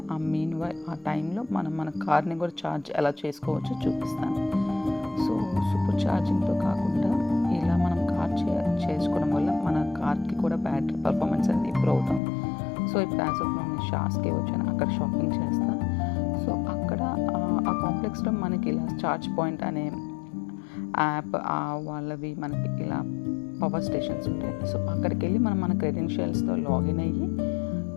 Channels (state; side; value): drops out; right; at 12.2 s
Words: ఆ టైంలో మనం మన కార్ని కూడా ఛార్జ్ ఎలా చేసుకోవచ్చో చూపిస్తాను. సో సూపర్ ఛార్జింగ్తో కాకుండా ఇలా మనం కార్ చేసుకోవడం వల్ల మన కార్కి కూడా బ్యాటరీ పర్ఫార్మెన్స్ అనేది ఇంప్రూవ్ అవుతాం. సో ఇప్పుడు యాజ్ ఆఫ్ నేను షాస్కి వచ్చాను, అక్కడ షాపింగ్ చేస్తా. సో అక్కడ ఆ కాంప్లెక్స్లో మనకి ఇలా ఛార్జ్ పాయింట్ అనే యాప్ వాళ్ళవి మనకి ఇలా పవర్ స్టేషన్స్ ఉంటాయి. సో అక్కడికి వెళ్ళి మనం మన క్రెడెన్షియల్స్తో లాగిన్ అయ్యి